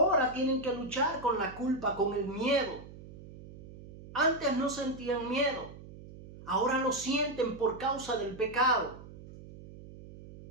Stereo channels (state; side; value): noise; right; hum, 17 dB below the sound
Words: tienen que luchar con la culpa, con el miedo. Antes no sentían miedo. Ahora lo sienten por causa del pecado.